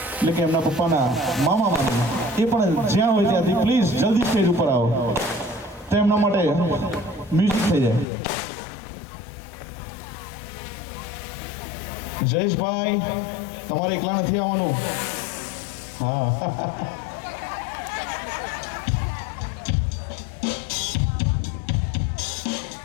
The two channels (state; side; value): drops out; right; at 8.1 s